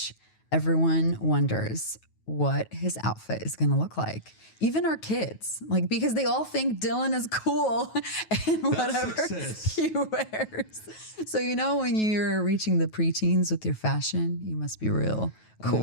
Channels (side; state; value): right; late; 9.3 ms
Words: everyone wonders what his outfit is going to look like. Even our kids, like, because they all think Dylan is cool and whatever success. he wears. So, you know, when you're reaching the preteens with your fashion, you must be real